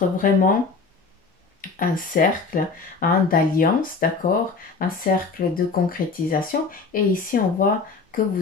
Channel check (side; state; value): right; quieter; 4.5 dB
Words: vraiment un cercle, hein, d'alliance, d'accord, un cercle de concrétisation. Et ici, on voit que